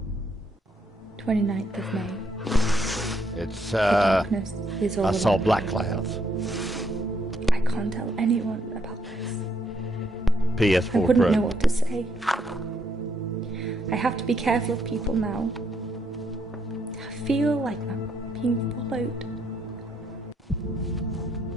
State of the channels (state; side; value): normal; both; correlation 0.73